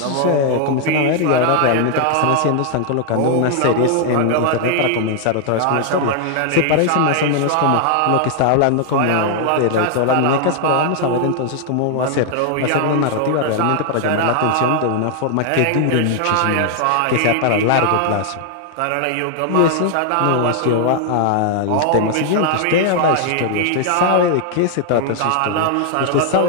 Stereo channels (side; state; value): both; different; correlation 0.00